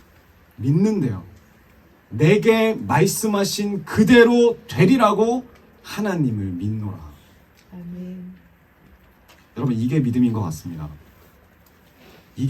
믿는데요. 내게 말씀하신 그대로 되리라고 하나님을 믿노라. 아멘. 여러분 이게 믿음인 것 같습니다.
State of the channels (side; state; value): both; identical; correlation 1.00